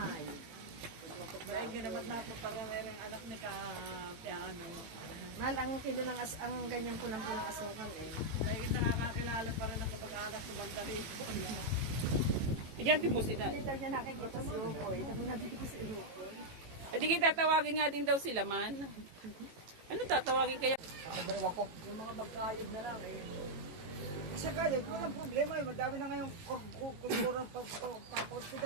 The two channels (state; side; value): late; left; 18 ms